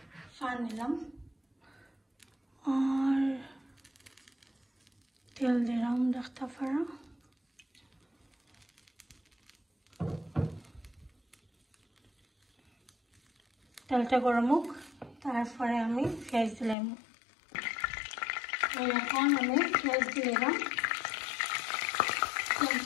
ফান নিলাম আর তেল দিলাম দেখতে পারা। তেলটা গরম হোক, তারপরে আমি পেঁয়াজ দিলাম। এখন আমি পেঁয়াজ দিলাম,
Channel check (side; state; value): right; drops out; at 16.8 s